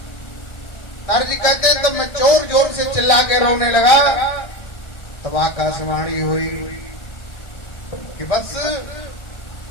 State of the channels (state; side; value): late; right; 1.3 ms